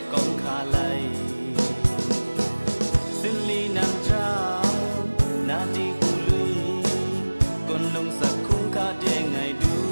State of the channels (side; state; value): both; inverted; correlation -1.00